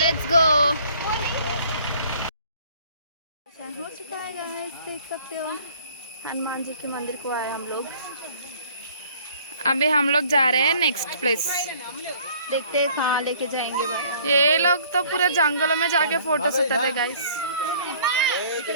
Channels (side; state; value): both; inverted; correlation -0.55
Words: गो। हो चुका है गाइस, देख सकते हो हनुमान जी के मंदिर को आए हम लोग। अभी हम लोग जा रहे हैं नेक्स्ट प्लेस, देखते हैं कहाँ लेके जाएंगे भाई। ये लोग तो पूरे जंगलों में जाके फोटोस उठाते गाइस।